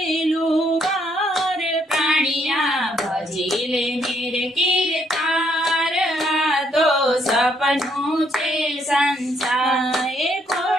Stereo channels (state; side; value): normal; both; correlation 0.71